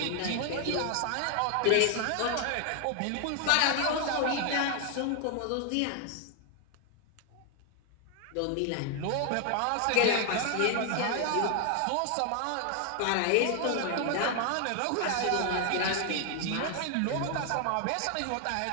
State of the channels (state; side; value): different; both; correlation 0.00